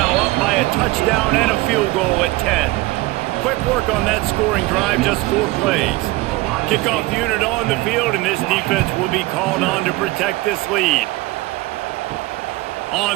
up by a touchdown and a field goal at 10. Quick work on that scoring drive, just 4 plays. Kickoff unit on the field, and this defense will be called on to protect this lead.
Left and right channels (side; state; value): left; quieter; 20.3 dB